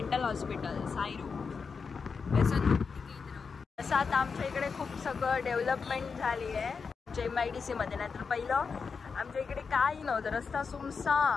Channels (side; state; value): right; quieter; 5.3 dB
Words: हॉस्पिटल साईरू व्यसन मुक्ती केंद्र. असं आता आमच्या इकडे खूप सगळं डेव्हलपमेंट झाली आहे आमच्या MIDC मध्ये. नाही तर पहिलं आमच्या इकडे काही नव्हतं, रस्ता